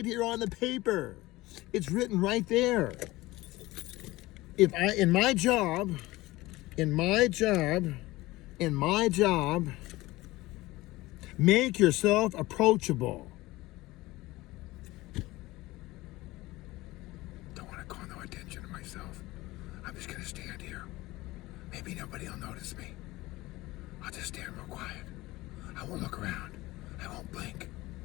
here on the paper. It's written right there. In my job, make yourself approachable. Don't want to call no attention to myself. I'm just going to stand here. Maybe nobody will notice me. I'll just stand real quiet. I won't look around. I won't blink.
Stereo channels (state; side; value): quieter; right; 19.3 dB